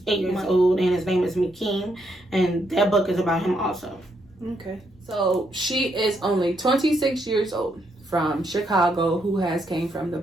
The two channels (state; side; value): normal; both; correlation 0.77